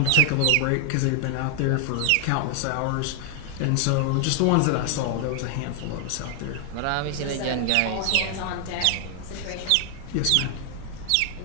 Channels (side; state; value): both; different; correlation 0.00